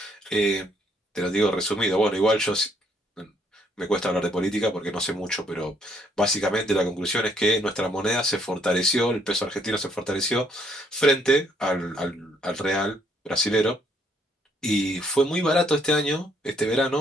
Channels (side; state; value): both; normal; correlation 0.68